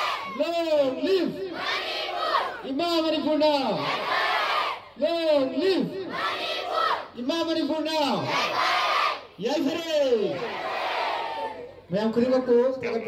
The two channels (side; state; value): both; identical; correlation 1.00